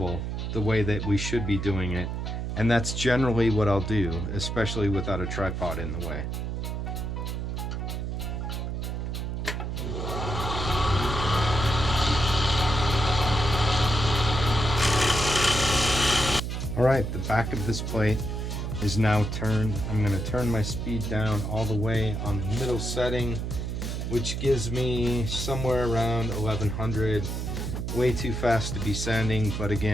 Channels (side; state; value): right; noise; hum, 3 dB below the sound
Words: the way that we should be doing it, and that's generally what I'll do, especially without a tripod in the way. Alright, the back of this plate is now turned. I'm going to turn my speed down all the way on the middle setting, which gives me somewhere around 1100. Way too fast to be sanding, but